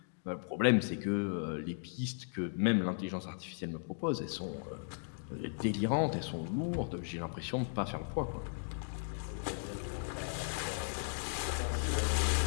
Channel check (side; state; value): right; silent; digital silence